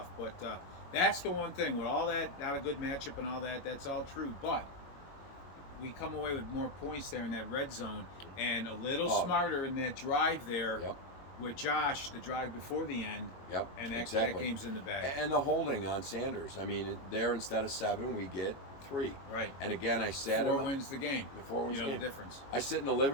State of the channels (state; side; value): late; right; 22 ms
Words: But that's the one thing with all that, not a good matchup and all that. That's all true, but we come away with more points there in that red zone and a little smarter in that drive there Yep. with Josh, the drive before the end. Yep. And that exactly. game's in the bag. And the holding on Sanders. I mean, there instead of 7, we get 3. Right. And again, I sat Four him. wins the game. The 4 wins you know the game. the difference. I sit in the